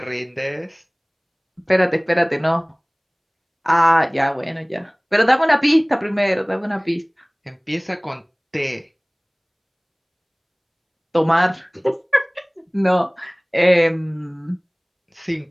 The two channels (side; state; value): both; identical; correlation 1.00